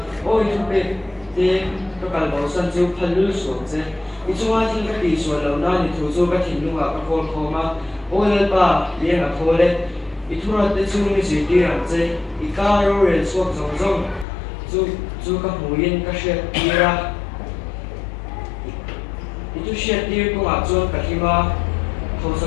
ôi thu bê thì các bạn bảo sân chiếu phân lưu xuống chứ đi chung ai thì cái đi xuống lâu na đi thu số cái tin nung à cái con khó mà ôi lên ba liền là thôi đấy đi thu ra tới chung đi gì đi làm chứ đi cá rồi xuống giống giống chú các mối yên các chuyện đi ra itu syaitir ko ajon kahima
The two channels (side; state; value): right; drops out; at 14.2 s